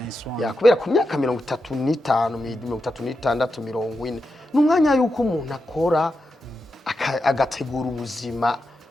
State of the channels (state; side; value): normal; both; correlation 0.87